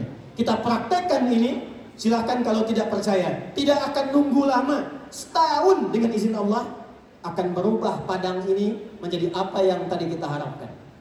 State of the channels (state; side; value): identical; both; correlation 1.00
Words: Kita praktekkan ini, silahkan kalau tidak percaya. Tidak akan nunggu lama, setahun dengan izin Allah akan berubah Padang ini menjadi apa yang tadi kita harapkan.